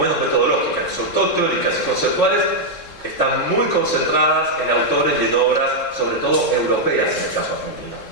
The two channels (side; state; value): left; late; 3.6 ms